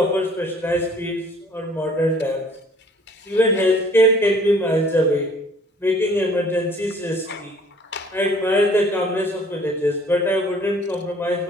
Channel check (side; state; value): both; normal; correlation 0.55